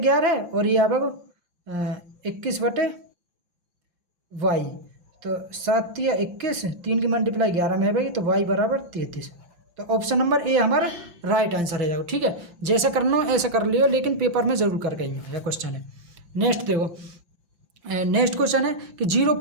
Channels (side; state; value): left; late; 5.8 ms